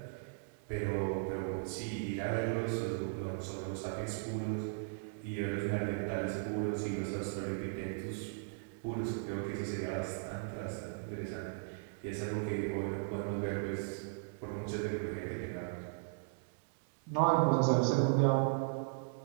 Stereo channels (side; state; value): left; silent; digital silence